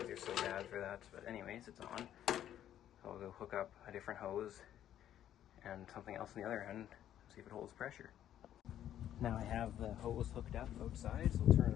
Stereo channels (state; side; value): quieter; right; 11.2 dB